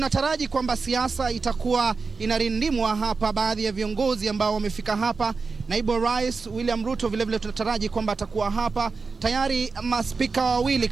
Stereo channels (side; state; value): left; quieter; 4.6 dB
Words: kwamba siasa itakuwa inarindimwa hapa. Baadhi ya viongozi ambao wamefika hapa, naibu rais William Ruto vile tunataraji kwamba atakuwa hapa. Tayari maspika wawili